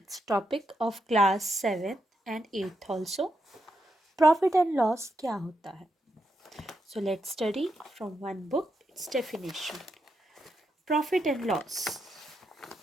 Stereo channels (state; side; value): normal; both; correlation 0.83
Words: topic of class 7th and 8th also. Profit and loss क्या होता है? So let's study from one book it's definition. Profit and loss.